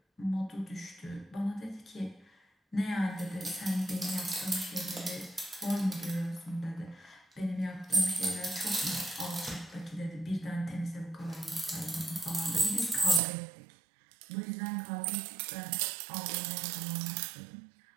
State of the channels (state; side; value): drops out; left; at 13.2 s